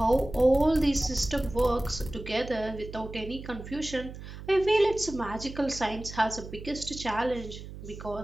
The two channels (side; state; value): right; noise; hum, 12 dB below the sound